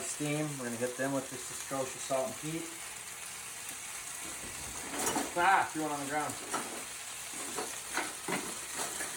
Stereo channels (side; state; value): both; identical; correlation 1.00